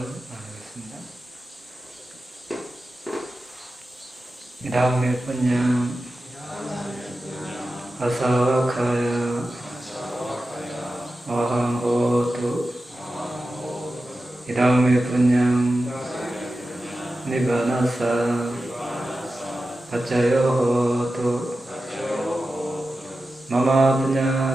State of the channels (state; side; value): normal; both; correlation 0.93